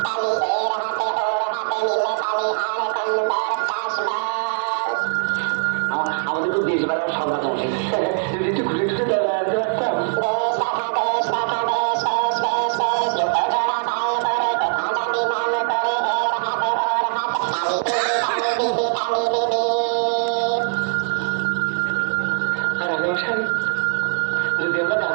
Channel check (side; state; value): left; silent; digital silence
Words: আমাদের তো দেশ বেড়াও সন্ধ্যা মশাই, যদি একটু ঘুরে ঘুরে বেড়াতে পারতাম। আর রাজা মশাই, যদি আমরা গান